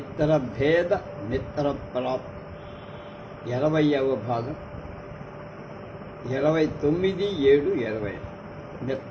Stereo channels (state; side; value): identical; both; correlation 1.00